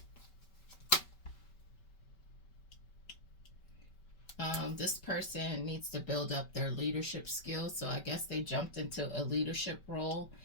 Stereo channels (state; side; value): late; right; 5.2 ms